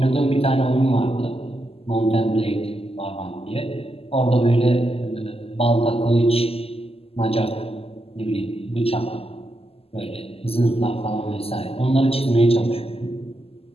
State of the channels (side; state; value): right; late; 0.29 ms